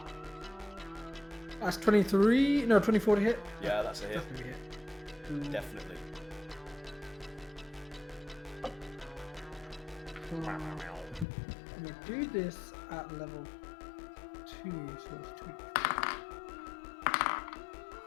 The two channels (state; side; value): drops out; right; at 11.2 s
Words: That's 24 to hit. Yeah, that's a hit. Definitely hit. Definitely. So, I'm gonna do this at level 2, so it's